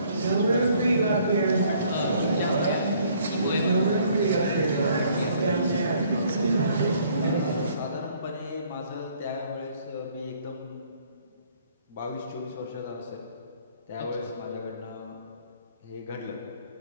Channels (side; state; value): both; inverted; correlation -0.62